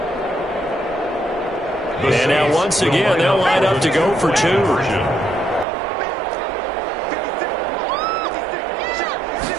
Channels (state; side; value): drops out; left; at 5.7 s